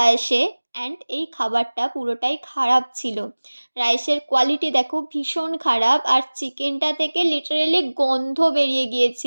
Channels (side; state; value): both; inverted; correlation -1.00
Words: আসে, অ্যান্ড এই খাবারটা পুরোটাই খারাপ ছিল। রাইসের কোয়ালিটি দেখো ভীষণ খারাপ, আর চিকেনটা থেকে লিটারেলি গন্ধ বেরিয়ে